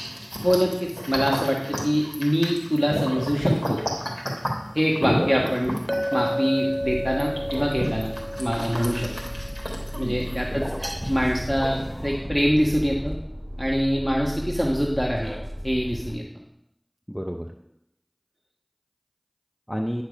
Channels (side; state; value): both; identical; correlation 1.00